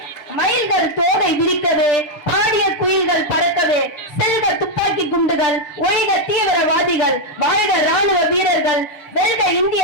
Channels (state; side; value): late; right; 7.0 ms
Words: மயில்கள் தோகை விரிக்கவே, பாடிய குயில்கள் பறக்கவே, செல்க துப்பாக்கி குண்டுகள், ஒழிக தீவிரவாதிகள், வாழ்க ராணுவ வீரர்கள், வெல்க இந்திய